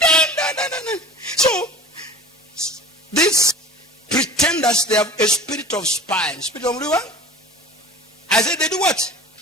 So these pretenders, they have a spirit of spying. Spirit of what? I said they do what?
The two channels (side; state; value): both; normal; correlation 0.40